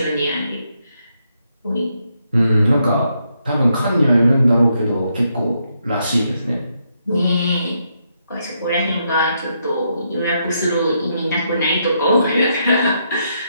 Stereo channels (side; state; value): both; inverted; correlation -0.78